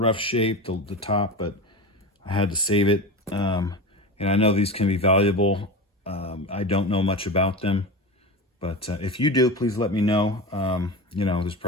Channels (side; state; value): both; normal; correlation 0.26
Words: shape, the top, but I had to save it. And I know these can be valuable. I don't know much about them, but if you do, please let me know. You know, there's